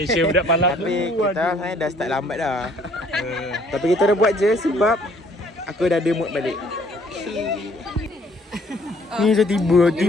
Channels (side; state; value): both; normal; correlation 0.61